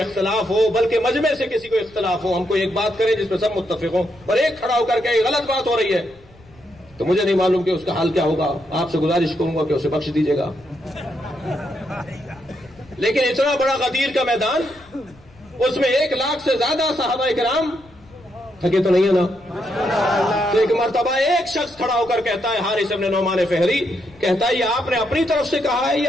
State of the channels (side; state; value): left; noise; rumble, 27 dB below the sound